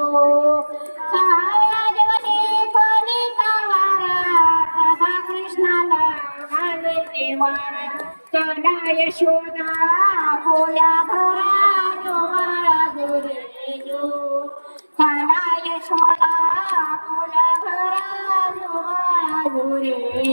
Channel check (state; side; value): inverted; both; correlation -1.00